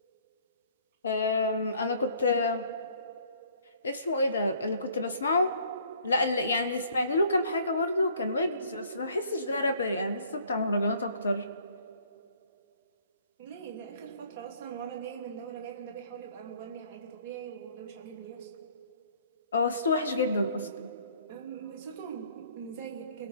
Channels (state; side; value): inverted; both; correlation -0.59